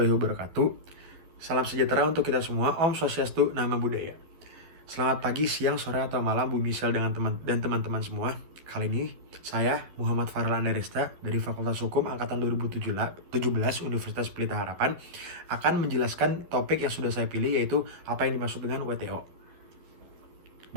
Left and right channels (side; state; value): left; late; 12 ms